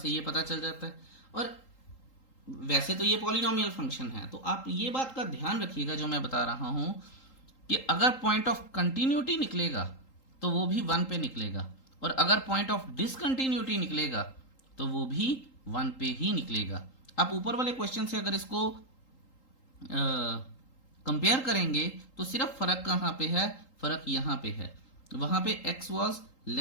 ये पता चल जाता है। और वैसे तो ये पॉलिनोमियल फंक्शन है, तो आप ये बात का ध्यान रखिएगा जो मैं बता रहा हूं कि अगर पॉइंट ऑफ कंटिन्यूटी निकलेगा तो वो भी 1 पे निकलेगा, और अगर पॉइंट ऑफ डिसकंटिन्यूटी निकलेगा तो वो भी 1 पे ही निकलेगा। आप ऊपर वाले क्वेश्चन से अगर इसको कंपेयर करेंगे तो सिर्फ फर्क कहां पे है, फर्क यहां पे है। वहां पे x was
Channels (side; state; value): right; late; 3.8 ms